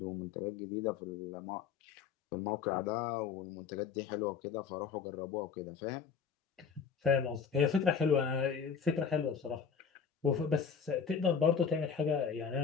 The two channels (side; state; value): right; quieter; 6.5 dB